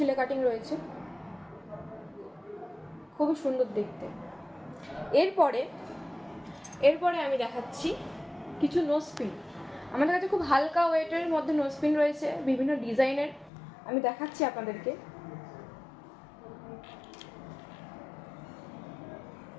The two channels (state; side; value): drops out; right; at 13.5 s